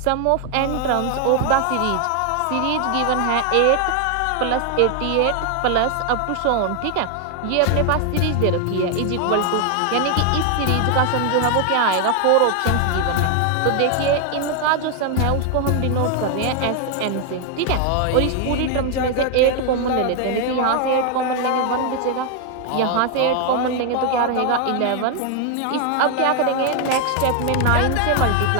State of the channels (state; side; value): different; both; correlation 0.00